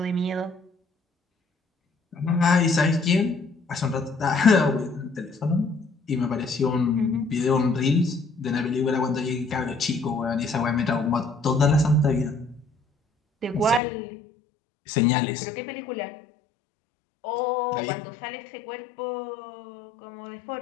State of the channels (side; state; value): right; drops out; at 13.8 s